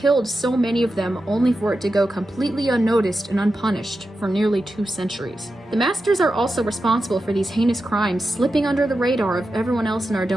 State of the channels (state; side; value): normal; both; correlation 0.90